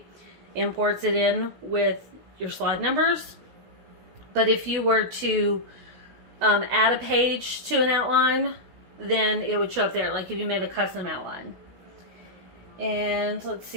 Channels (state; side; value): late; left; 16 ms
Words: imports it in with your slide numbers. But if you were to add a page to an outline, then it would show up there, like if you made a custom outline. And let's